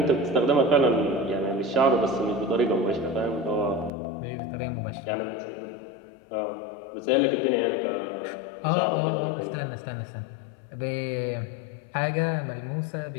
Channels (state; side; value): drops out; right; at 3.9 s